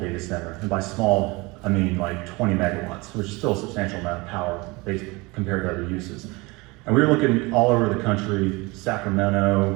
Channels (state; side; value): quieter; left; 24.5 dB